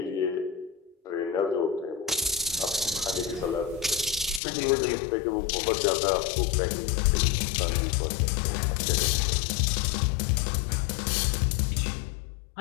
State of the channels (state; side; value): drops out; right; at 4.4 s